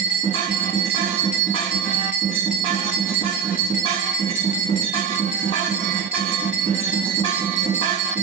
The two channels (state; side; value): quieter; left; 7.3 dB